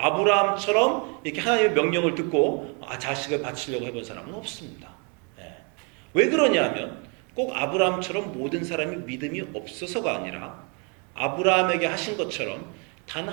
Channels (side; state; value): left; quieter; 33.9 dB